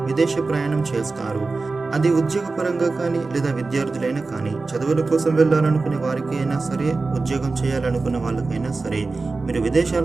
విదేశీ ప్రయాణం చేస్తారు. అది ఉద్యోగపరంగా కానీ లేదా విద్యార్థులైనా కానీ, చదువుల కోసం వెళ్ళాలనుకునే వారికి అయినా సరే, ఉద్యోగం చేయాలనుకునే వాళ్ళకైనా సరే మీరు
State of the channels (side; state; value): left; quieter; 3.8 dB